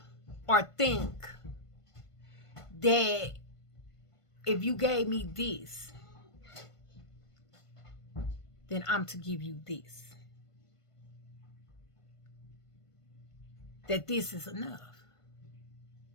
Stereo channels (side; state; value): right; late; 1.5 ms